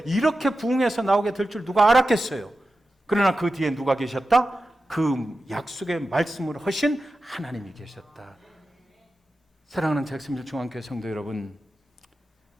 이렇게 부흥해서 나오게 될 줄 누가 알았겠어요. 그러나 그 뒤에 누가 계셨다? 그 약속의 말씀으로 하신 하나님이 계셨다. 사랑하는 잭슨빌 중앙교회 성도 여러분,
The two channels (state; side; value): normal; both; correlation 0.93